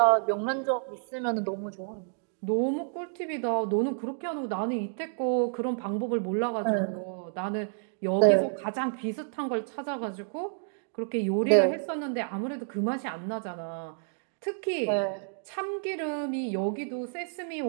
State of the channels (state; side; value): silent; left; digital silence